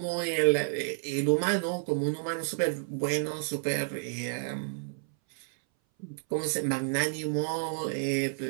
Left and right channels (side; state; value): left; silent; 58 dB below the other